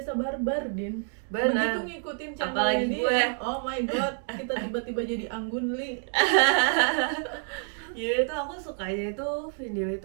barbar, Din. Benar. Begitu ngikutin channelnya Apalagi dia, gue. oh my god, kita tiba-tiba jadi anggun li. Ya itu aku sukanya itu video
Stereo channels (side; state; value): left; silent; 55 dB below the other